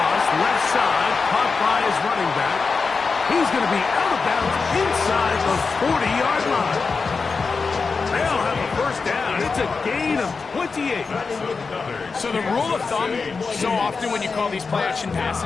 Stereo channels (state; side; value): quieter; right; 4.7 dB